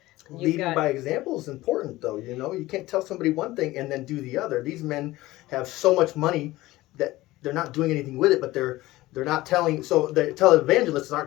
Leading by example is important, though. You know, you can't tell somebody one thing and then do the other. These men have so much money that they're not doing anything with it, but they're not telling. So the televangelists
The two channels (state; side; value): quieter; right; 18.0 dB